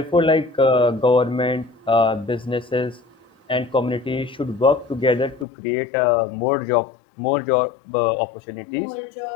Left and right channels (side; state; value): right; drops out; at 5.5 s